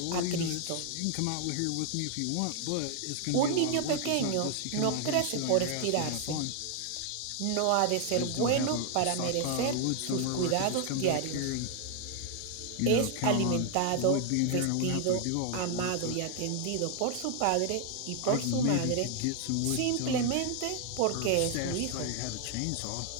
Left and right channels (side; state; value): both; different; correlation 0.00